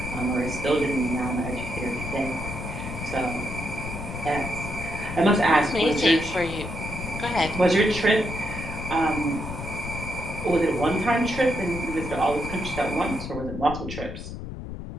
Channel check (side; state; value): left; noise; rumble, 8 dB below the sound